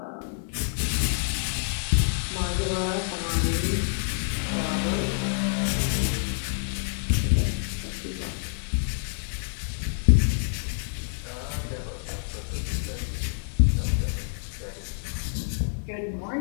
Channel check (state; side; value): silent; right; digital silence